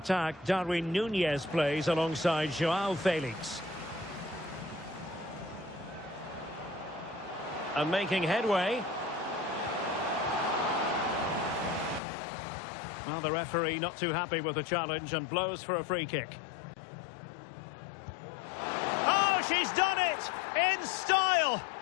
Darwin Núñez plays alongside João Felix. And making headway. Well, the referee not too happy with the challenge and blows for a free kick. Oh, she's done it in style.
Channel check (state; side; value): drops out; right; at 12.0 s